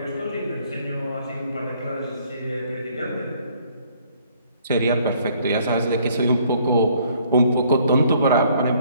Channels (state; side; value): inverted; both; correlation -0.63